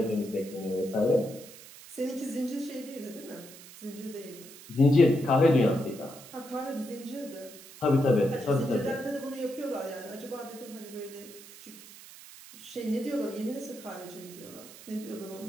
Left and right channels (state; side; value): noise; right; hiss, 17 dB below the sound